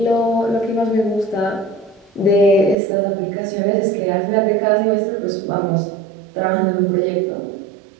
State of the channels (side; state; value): left; drops out; at 2.8 s